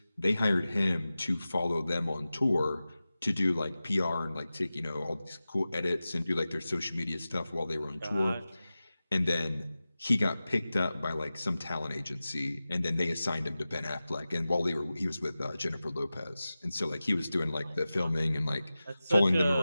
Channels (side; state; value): both; inverted; correlation -0.95